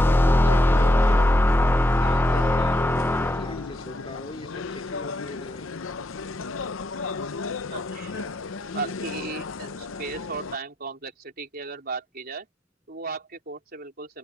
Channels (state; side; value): normal; both; correlation 0.80